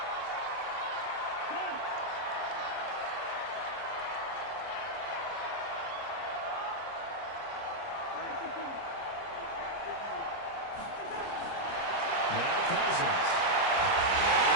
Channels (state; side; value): late; right; 30 ms